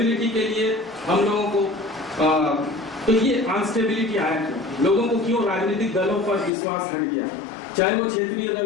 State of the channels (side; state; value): right; drops out; at 6.5 s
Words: के लिए हम लोगों को तो ये अनस्टेबिलिटी आया क्यों, लोगों को क्यों राजनीतिक दलों पर विश्वास हट गया, चाहे वो क्षेत्रीय